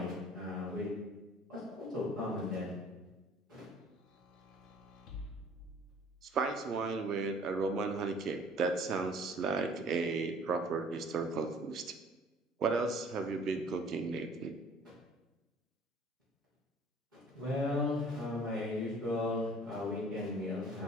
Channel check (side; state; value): both; normal; correlation 0.53